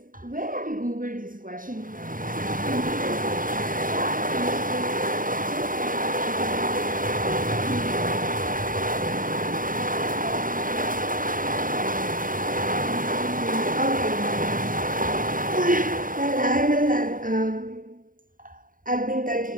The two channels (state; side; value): late; left; 0.40 ms